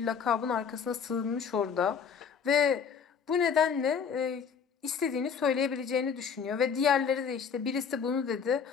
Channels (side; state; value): right; quieter; 6.7 dB